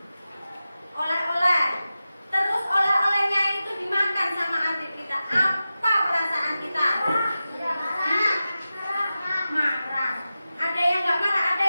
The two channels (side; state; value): both; inverted; correlation -0.94